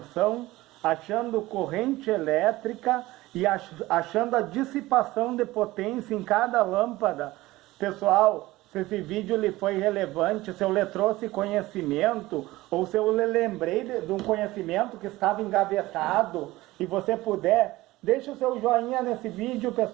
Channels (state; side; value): quieter; left; 18.4 dB